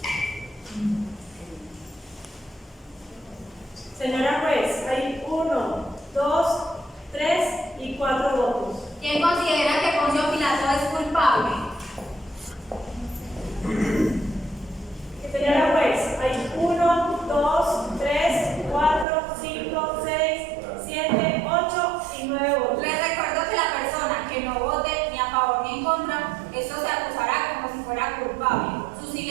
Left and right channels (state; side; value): drops out; left; at 19.1 s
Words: Señora juez, hay 1, 2, 3 y 4 votos. ¿Quién considera que Poncio Pilato es culpable? Señora juez, hay 1, 2, 3, 4, 5, 6, 7, 8 y 9 votos. Les recuerdo que la persona que no vote ni a favor ni en contra, esto se acusará como si fuera culpable. Su